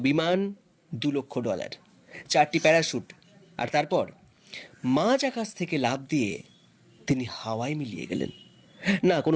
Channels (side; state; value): both; identical; correlation 1.00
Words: বিমান, $2 লক্ষ, 4টি প্যারাশুট, আর তারপর মাঝ আকাশ থেকে লাফ দিয়ে তিনি হাওয়ায় মিলিয়ে গেলেন। না